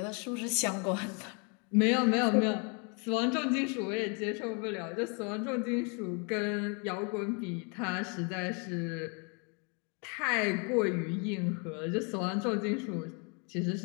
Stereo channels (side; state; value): right; quieter; 35.4 dB